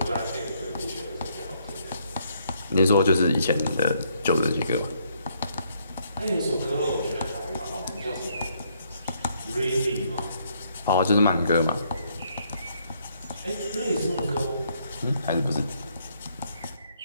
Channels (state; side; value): inverted; both; correlation -0.70